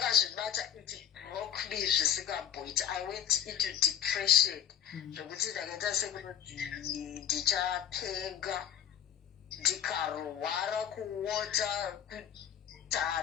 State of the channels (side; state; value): right; quieter; 9.7 dB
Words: matter it broke me the point. I went into depression. The good I get a second teacher pega. Ndikarwara kuota